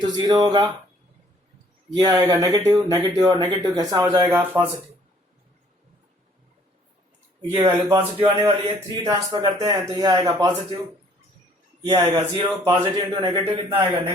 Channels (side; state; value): both; normal; correlation 0.59